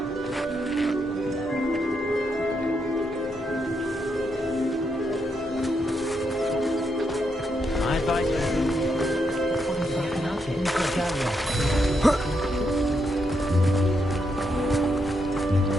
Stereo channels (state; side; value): normal; both; correlation 0.80